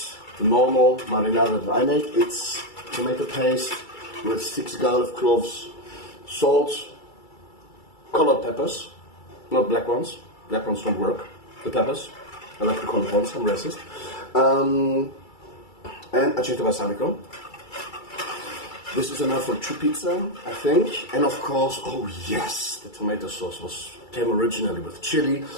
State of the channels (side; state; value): right; late; 2.3 ms